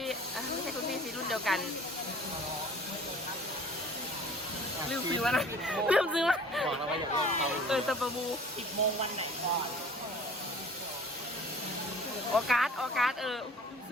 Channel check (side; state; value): both; normal; correlation 0.47